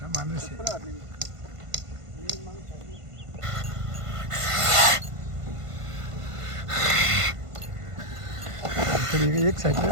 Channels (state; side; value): late; left; 1.5 ms